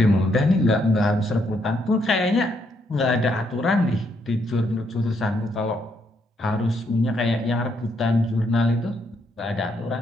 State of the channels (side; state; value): both; normal; correlation 0.75